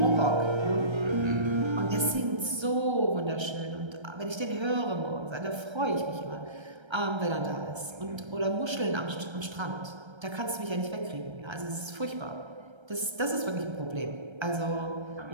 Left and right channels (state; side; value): late; left; 1.3 ms